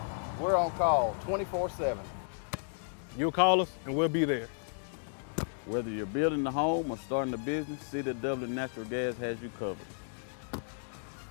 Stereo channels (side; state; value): right; silent; digital silence